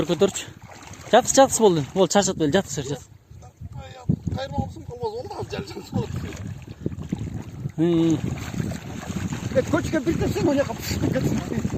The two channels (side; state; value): both; identical; correlation 1.00